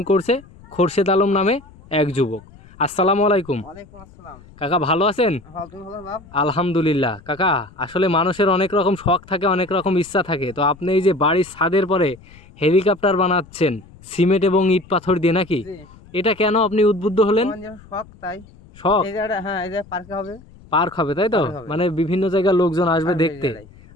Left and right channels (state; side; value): noise; left; rumble, 23 dB below the sound